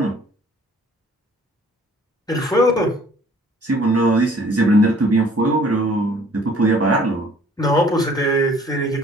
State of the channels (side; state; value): both; normal; correlation 0.56